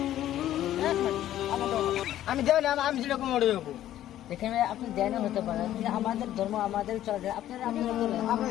আমি দেব না, আমি যেরকম মরে যাবো। দেখেন ভাই, আপনি দেনও হতে পারেন, কিন্তু আমাদের ধর্ম আমাদের চলে। আপনারা আপনারা বলেন। আমার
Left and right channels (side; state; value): right; quieter; 12.6 dB